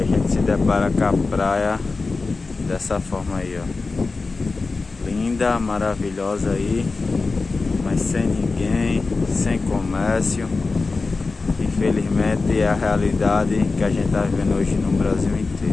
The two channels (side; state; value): right; quieter; 3.9 dB